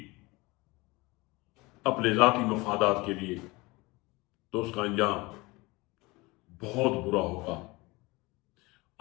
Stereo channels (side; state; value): right; quieter; 23.4 dB